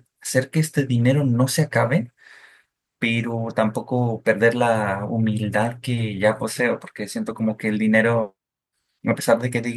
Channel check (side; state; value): both; identical; correlation 1.00